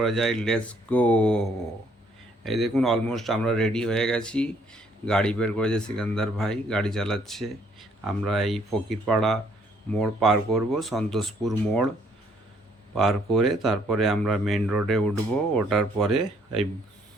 যায়, লেটস গো। এই দেখুন, অলমোস্ট আমরা রেডি হয়ে গেছি। গাড়ি বের করেছে সিকান্দার ভাই, গাড়ি চালাচ্ছে। আমরা এই ফকিরপাড়া মোড় পার করব, সন্তোষপুর মোড় পার করে তারপরে আমরা মেন রোডে উঠবো। ওঠার পরে এই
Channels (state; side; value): normal; both; correlation 0.66